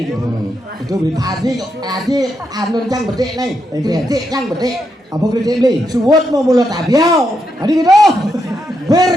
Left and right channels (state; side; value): normal; both; correlation 0.81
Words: gitu itu beli Adi anu cang bedek nih. Kritik cang bedek. apa kerja beli Suwut mau mulut abiau. adi gitu